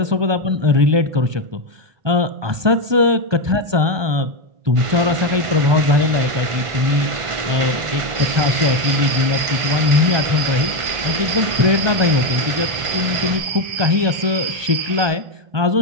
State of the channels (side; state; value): left; late; 1.5 ms